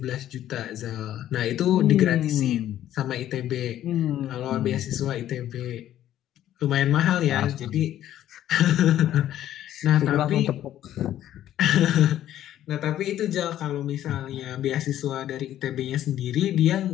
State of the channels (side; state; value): right; quieter; 12.2 dB